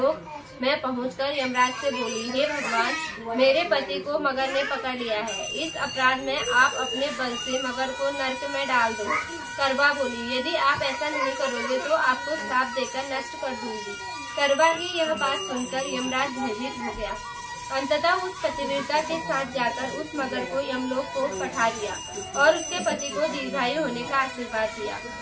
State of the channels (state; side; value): identical; both; correlation 1.00